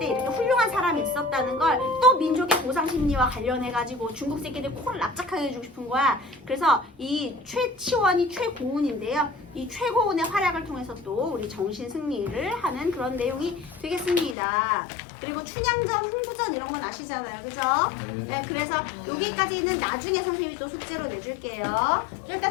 이렇게 훌륭한 사람이 있었다는 걸 또 민족의 보상 심리와 관련해가지고 중국 새끼들 코를 납작하게 해주고 싶은 거야. 그래서 이 최치원이 최고운인데요. 이 최고운의 활약을 통해서 또 우리 정신 승리를 하는 그런 내용이 되겠습니다. 그리고 춘향전, 흥부전 이런 건 아시잖아요, 그죠? 네, 그래서 여기까지는 나중에 선생님이 또 숙제로 내줄게요. 일단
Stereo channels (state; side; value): drops out; right; at 14.4 s